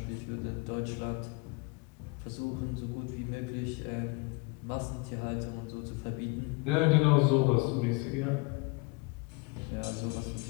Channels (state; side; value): quieter; right; 26.7 dB